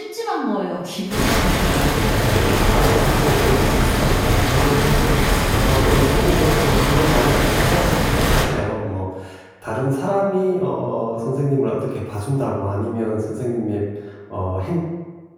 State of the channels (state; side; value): identical; both; correlation 1.00